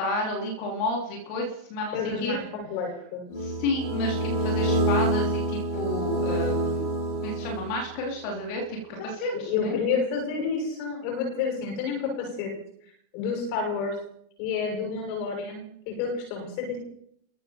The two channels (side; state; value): right; late; 38 ms